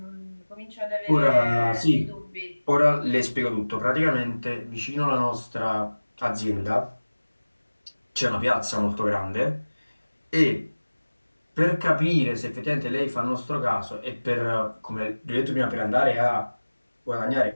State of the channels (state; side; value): inverted; both; correlation -1.00